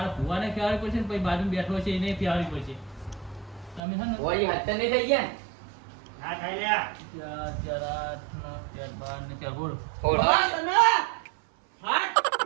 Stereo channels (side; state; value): left; drops out; at 3.8 s